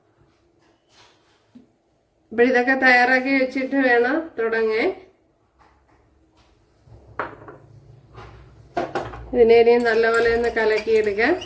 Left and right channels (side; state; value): both; identical; correlation 1.00